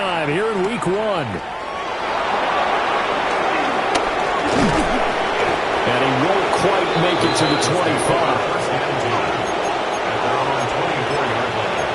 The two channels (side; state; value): both; identical; correlation 1.00